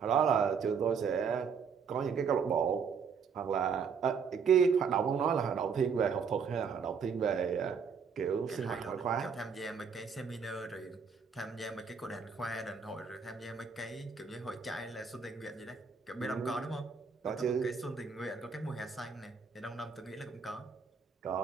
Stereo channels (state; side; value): quieter; left; 6.0 dB